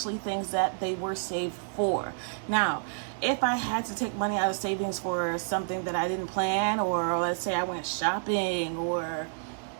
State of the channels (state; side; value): silent; left; digital silence